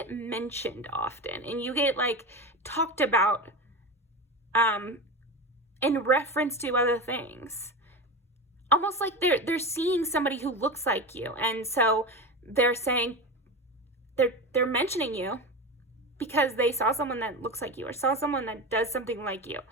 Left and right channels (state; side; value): normal; both; correlation 0.23